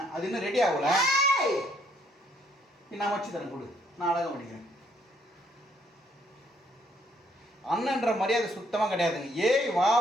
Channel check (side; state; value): both; normal; correlation 0.68